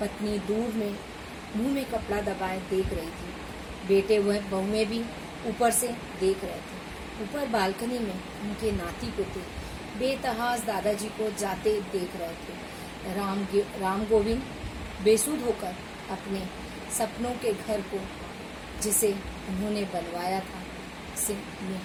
दूर में मुंह में कपड़ा दबाए देख रही थी। बेटे वह बहुएं भी ऊपर से देख रहे थे। ऊपर बालकनी में उनके नाती पोते बेतहास दादाजी को जाते देख रहे थे। राम गोविंद बेसुध होकर अपने सपनों के घर को, जिसे उन्होंने बनवाया था, उसे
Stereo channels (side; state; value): both; identical; correlation 1.00